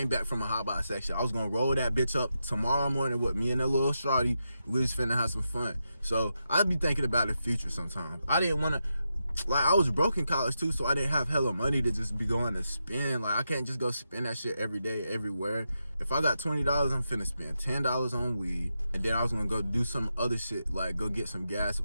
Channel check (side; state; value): both; inverted; correlation -0.86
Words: back from a Hotbox section. I was gonna roll that bitch up tomorrow morning with me and that little shawty. We was finna have some fun. So I'd be thinking about the future sometimes. I didn't wanna, like, I was broke in college too, so I didn't have hella money to just be going to spend. Like, I can't just go spend that shit every day, everywhere. If I got $20, I'm finna spend $10 on weed. And then I was gonna go do some other shit, like go get some gas